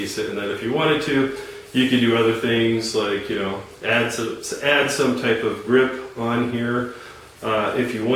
And then if you wanted to, you could do other things like add some type of grip on here. If you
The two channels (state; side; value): identical; both; correlation 1.00